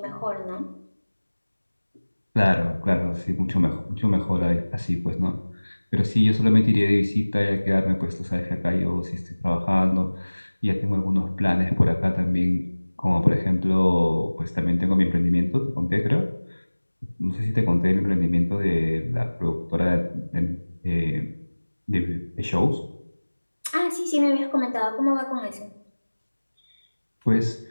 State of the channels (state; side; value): inverted; both; correlation -1.00